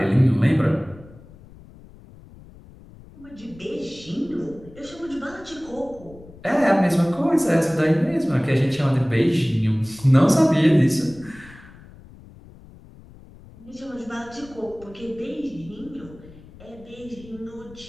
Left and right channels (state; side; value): noise; left; rumble, 21 dB below the sound